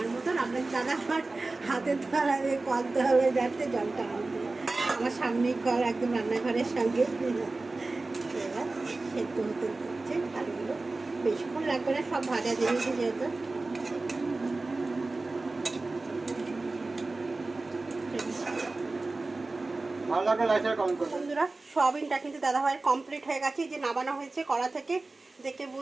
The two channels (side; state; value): left; quieter; 3.3 dB